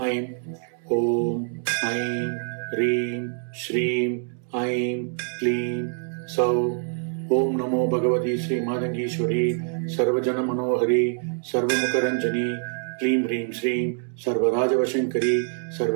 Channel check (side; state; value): left; silent; 60 dB below the other